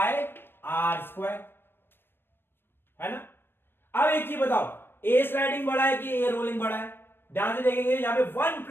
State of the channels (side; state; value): right; late; 0.10 ms